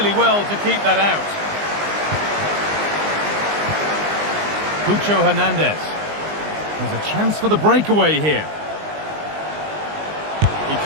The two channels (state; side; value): late; left; 19 ms